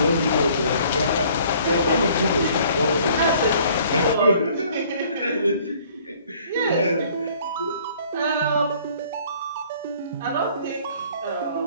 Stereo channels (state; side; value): inverted; both; correlation -0.57